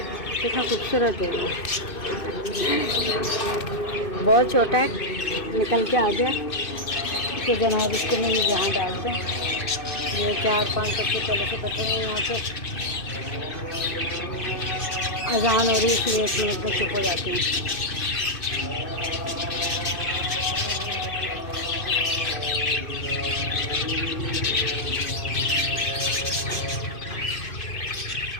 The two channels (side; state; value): right; late; 2.6 ms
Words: कितना खूबसूरत है। बहुत छोटा है, निकल के आ गया। इसको जनाब इसको मैं यहाँ डालते हैं। ये 4-5 बच्चे पहले से बैठे हैं यहाँ पे। अजान हो रही है इसलिए 1 मिनट में चुप हो जाते हैं।